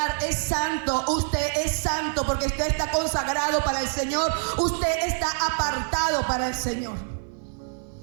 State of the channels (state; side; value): silent; left; digital silence